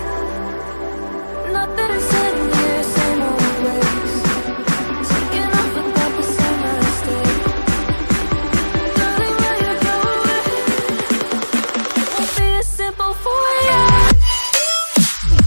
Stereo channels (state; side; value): inverted; both; correlation -1.00